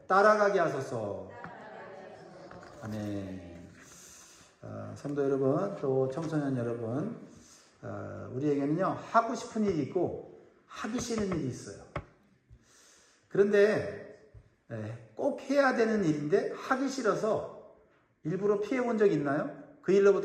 따라가게 하소서. 아멘. 성도 여러분, 또 청소년 여러분, 우리에게는요 하고 싶은 일이 있고 하기 싫은 일이 있어요. 그런데 꼭 해야 되는 일인데 하기 싫어서 일부러 피해본 적이 있나요? 그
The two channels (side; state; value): both; identical; correlation 1.00